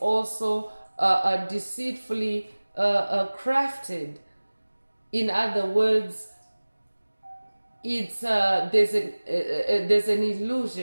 also deceitfully crafted. In other words, it's there's an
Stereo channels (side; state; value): both; inverted; correlation -1.00